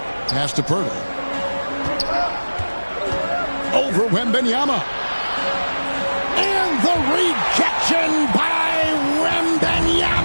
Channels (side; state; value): both; inverted; correlation -1.00